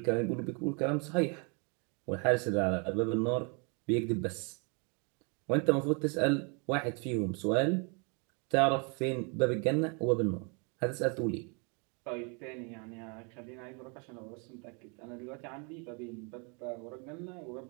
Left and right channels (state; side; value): quieter; left; 35.0 dB